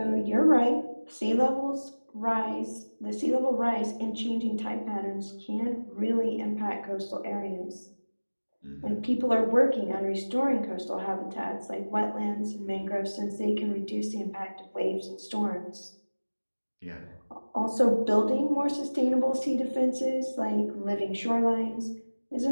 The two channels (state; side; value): inverted; both; correlation -1.00